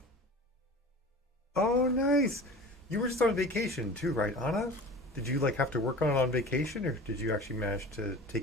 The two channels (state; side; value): normal; both; correlation 0.38